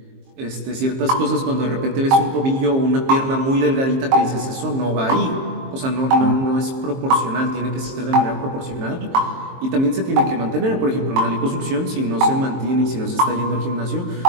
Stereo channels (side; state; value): left; late; 23 ms